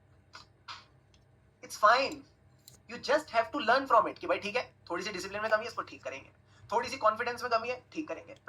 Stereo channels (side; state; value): both; identical; correlation 1.00